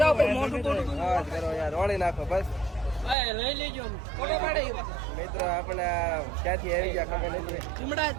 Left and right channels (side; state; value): left; drops out; at 3.2 s